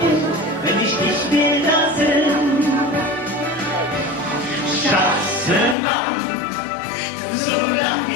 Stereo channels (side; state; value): right; drops out; at 5.8 s